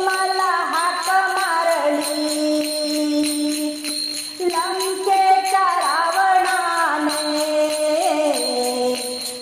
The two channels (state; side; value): identical; both; correlation 1.00